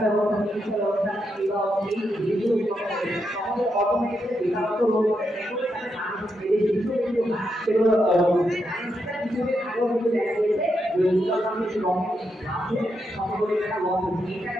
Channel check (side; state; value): both; normal; correlation 0.83